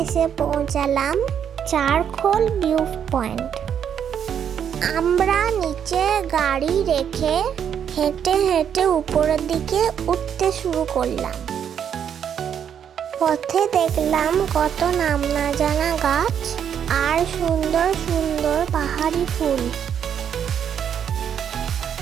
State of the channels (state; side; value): quieter; left; 8.5 dB